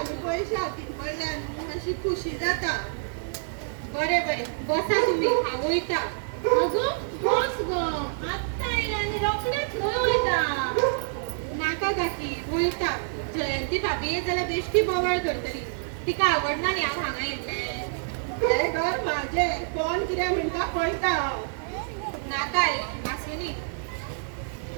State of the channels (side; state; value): left; silent; 56 dB below the other